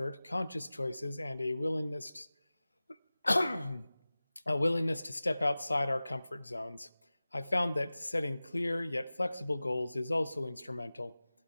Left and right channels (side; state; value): both; inverted; correlation -0.97